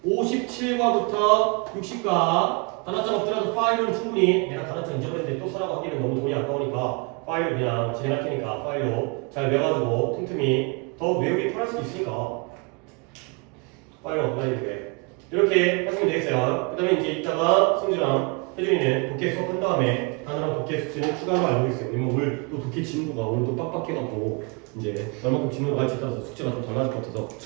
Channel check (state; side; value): quieter; left; 31.5 dB